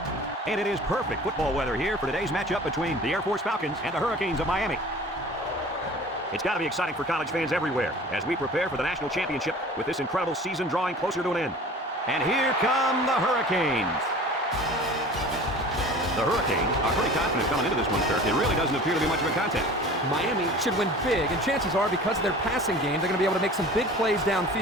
And it is perfect football weather here for today's matchup between the Air Force Falcons and the Hurricanes of Miami. It's got to be exciting for college fans everywhere as we prepare for the national championship with this incredible season drawing closer to an end. And here come the Hurricanes. The Hurricanes are pretty confident coming into this one, Kirk. It really doesn't appear to be much of a contest. Miami should win big, and chances are because of their passing game, they're going to be able to make some big plays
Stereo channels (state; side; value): normal; both; correlation 0.42